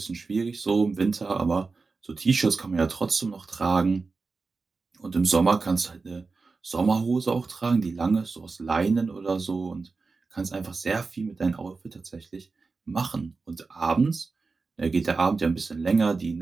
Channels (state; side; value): quieter; left; 4.2 dB